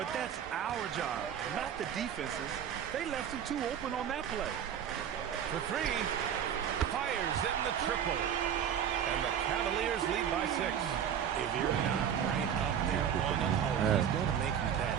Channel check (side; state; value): left; quieter; 8.8 dB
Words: that's our job, not the defense's. They left him too open on that play. For 3. Fires in the triple. And the Cavaliers lead by 6. If you're not right up there on him, he's going to make you bet.